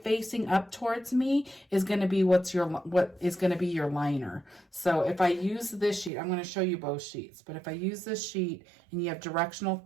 facing up towards me is going to be what is going to be your liner. So if I use this sheet, I'm going to show you both sheets, but if I use this sheet and you have directional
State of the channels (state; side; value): drops out; left; at 6.1 s